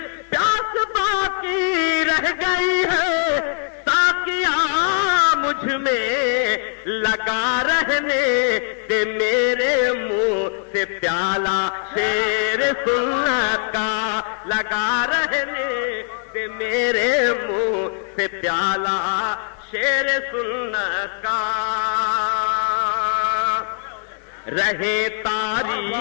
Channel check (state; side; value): silent; right; digital silence